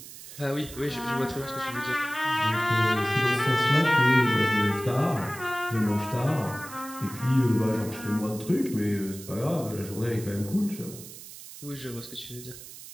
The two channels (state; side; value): noise; right; hiss, 15 dB below the sound